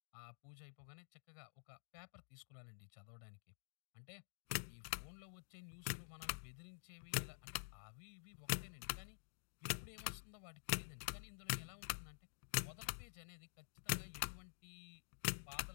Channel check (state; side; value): silent; right; digital silence